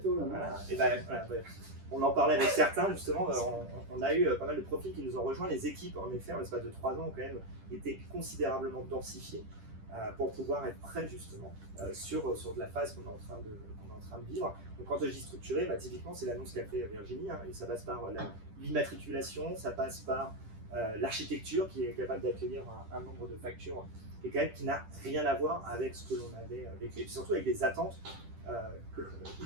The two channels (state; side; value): late; left; 10 ms